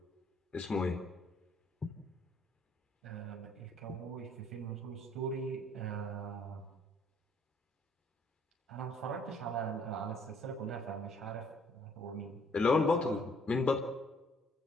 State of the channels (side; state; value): both; normal; correlation 0.62